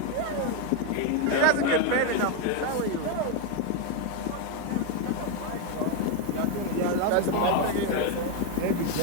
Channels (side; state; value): both; different; correlation 0.01